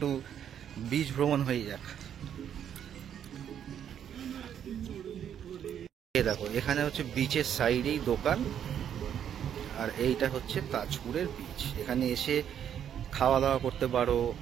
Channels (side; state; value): left; quieter; 9.3 dB